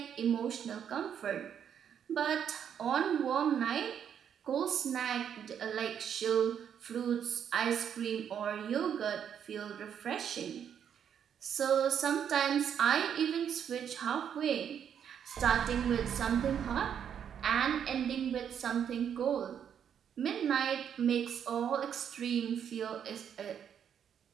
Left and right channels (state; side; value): quieter; left; 8.5 dB